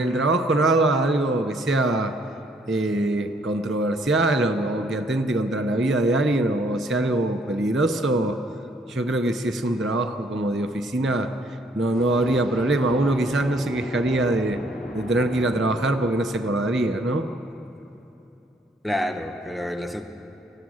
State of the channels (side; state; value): both; normal; correlation 0.65